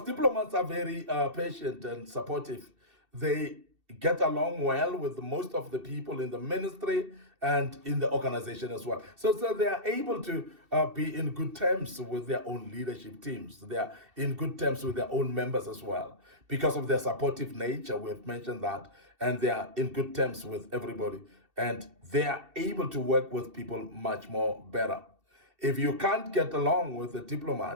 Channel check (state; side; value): late; left; 2.7 ms